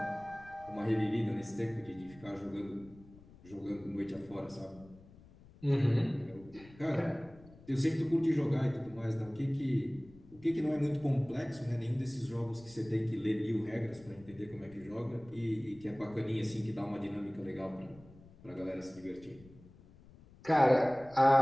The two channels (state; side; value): noise; left; rumble, 22 dB below the sound